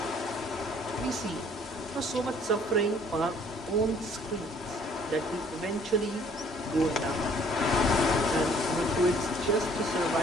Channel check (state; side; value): normal; both; correlation 0.59